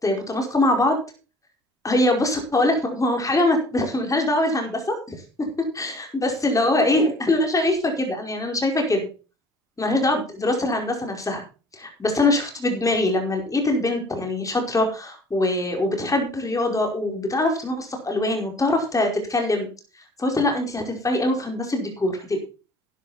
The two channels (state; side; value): normal; both; correlation 0.52